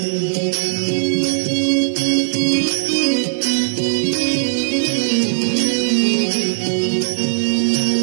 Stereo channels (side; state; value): left; silent; digital silence